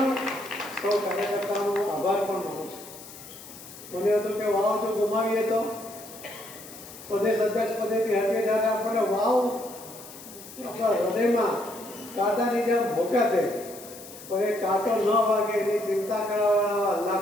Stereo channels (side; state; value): left; noise; hiss, 16 dB below the sound